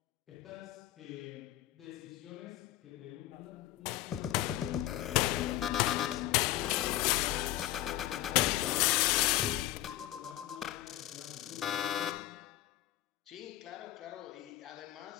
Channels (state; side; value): quieter; right; 14.3 dB